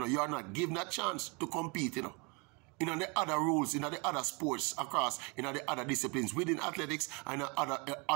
you're not given a chance to compete, you know. In the other rules, in the other sports across, in the other disciplines within athletics and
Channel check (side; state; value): left; quieter; 30.8 dB